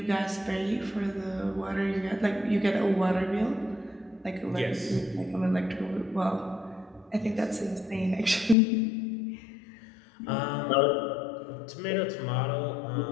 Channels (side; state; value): right; drops out; at 8.6 s